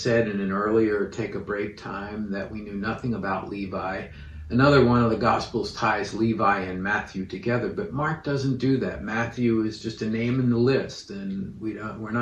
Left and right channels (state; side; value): identical; both; correlation 1.00